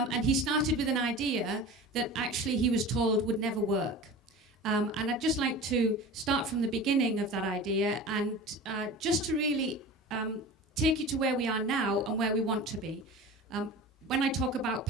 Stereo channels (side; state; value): both; normal; correlation 0.34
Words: he started with an idea that actually he was told would never work. And I'd just like to start from the beginning of that idea and just to really take you to where we are now and where we want to be. When I talk about